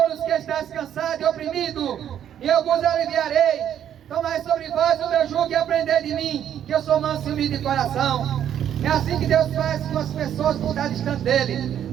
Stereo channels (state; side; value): quieter; left; 9.9 dB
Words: que estáis cansados e oprimidos, e eu vos aliviarei. Tomai sobre vós o meu jugo e aprendei de mim, que eu sou manso e humilde de coração. É assim que Deus faz com as pessoas que estão distante